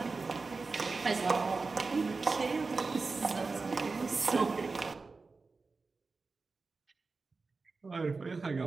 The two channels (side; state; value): left; quieter; 4.1 dB